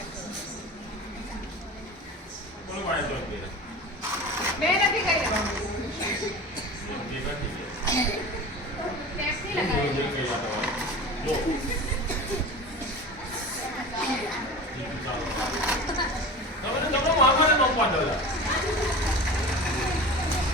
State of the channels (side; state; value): both; normal; correlation 0.33